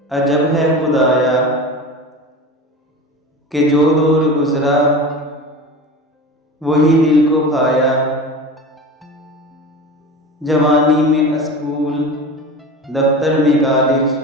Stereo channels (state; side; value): normal; both; correlation 0.32